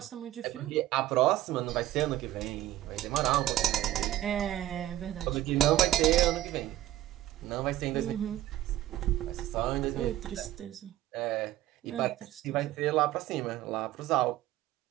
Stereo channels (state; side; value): quieter; left; 14.5 dB